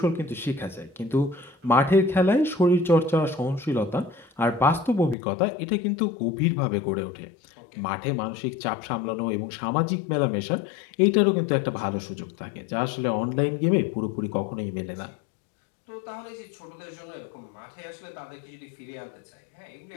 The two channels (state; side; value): drops out; right; at 5.2 s